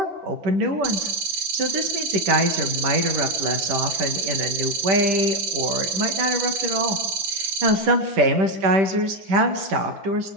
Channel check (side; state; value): left; late; 10 ms